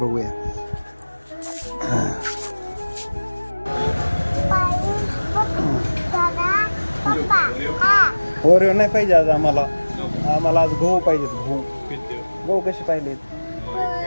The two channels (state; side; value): inverted; both; correlation -1.00